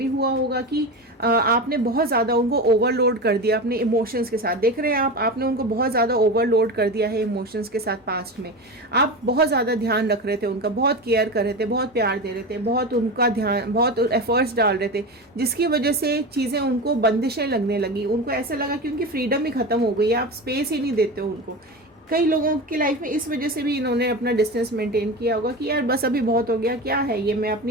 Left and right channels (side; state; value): both; normal; correlation 0.24